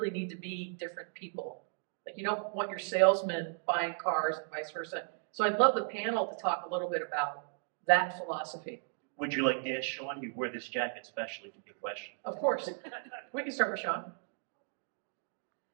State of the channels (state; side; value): silent; left; digital silence